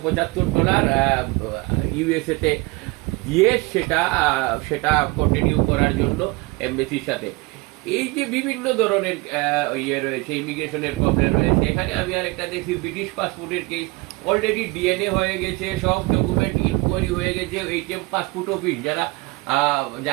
ইউএসএ তে দিয়ে সেটা কন্টিনিউ করার জন্য এমবেসির সাথে। এই যে বিভিন্ন ধরনের ইয়ে রয়েছে, ইমিগ্রেশনের প্রবলেম রয়েছে। এখানে আমি আরেকটা দেখি ব্রিটিশ পাসপোর্টের কেস, অলরেডি ডিএনএ হয়ে গেছে, সব ডকুমেন্ট ইনকোয়ারি হয়ে গেছে। এইচএম পাসপোর্ট অফিস, যারা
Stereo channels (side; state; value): left; quieter; 24.1 dB